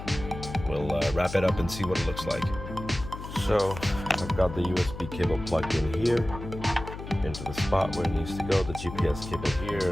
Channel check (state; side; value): noise; left; hum, 10 dB below the sound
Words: we'll wrap it up and see what it looks like. So I've got the USB cable plugged in here into the spot where it needs to go. The GPS cable here,